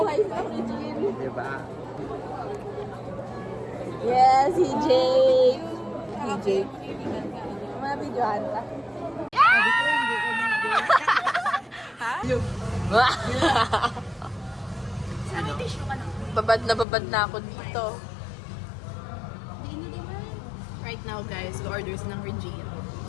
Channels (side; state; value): right; drops out; at 16.9 s